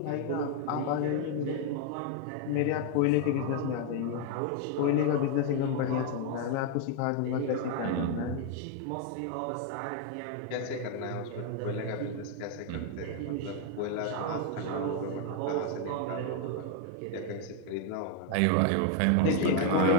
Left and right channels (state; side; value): different; both; correlation 0.00